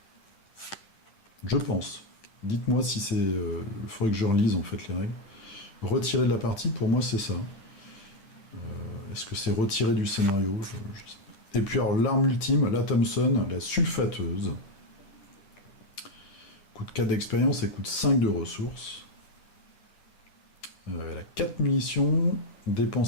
Je pense. Dites-moi si c'est... il faudrait que je relise en fait les règles. Retirer de la partie, pour moi c'est ça. Est-ce que c'est retirer du scénario? Je sais pas. Et puis alors l'arme ultime, la Thompson, la sulfateuse. Coûte 4 d'expérience et coûte 5 de ressources. Elle a 4 munitions,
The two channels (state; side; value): late; right; 10 ms